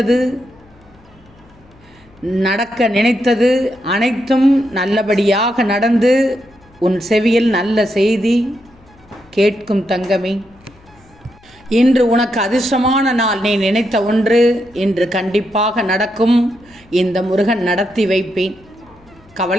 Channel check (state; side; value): noise; left; hum, 29 dB below the sound